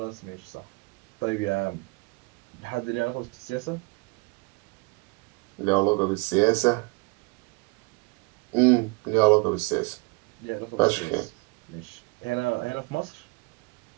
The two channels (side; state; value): left; quieter; 28.6 dB